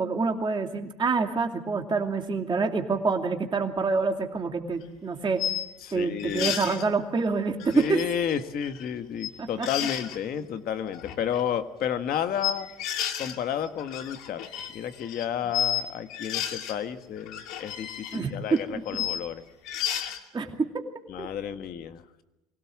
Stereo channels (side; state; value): both; normal; correlation 0.54